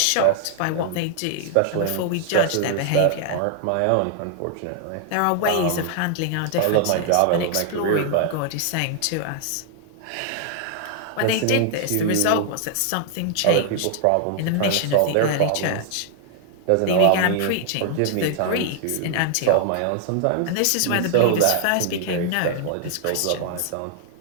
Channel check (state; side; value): different; both; correlation 0.00